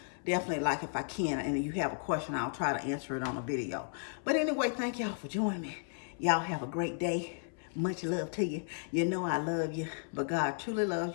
definitely, like, if I can and you have a question, I'll try to answer it on a video. But anyway, thank y'all for joining me. Y'all have a great day. Much love to you. You know I love you, but God truly loves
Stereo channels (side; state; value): right; silent; 55 dB below the other